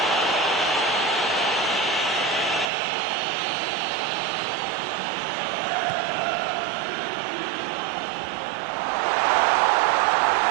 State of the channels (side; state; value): left; drops out; at 2.7 s